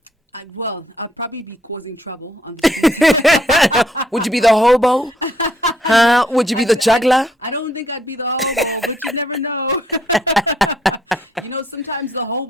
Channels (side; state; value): both; normal; correlation 0.69